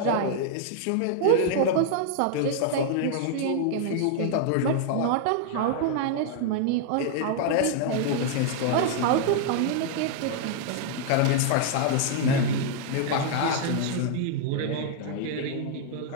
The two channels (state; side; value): different; both; correlation -0.01